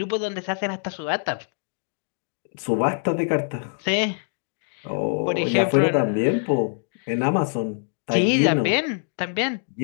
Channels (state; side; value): silent; right; 62 dB below the other